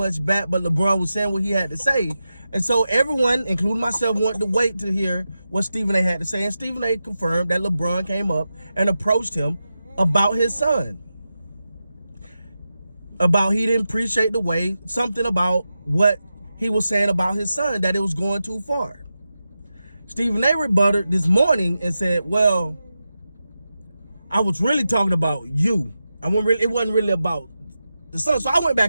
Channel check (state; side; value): inverted; both; correlation -0.91